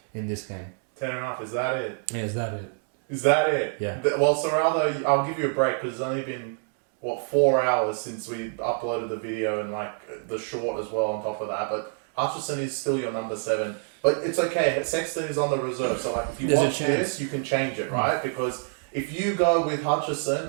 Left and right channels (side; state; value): left; silent; 60 dB below the other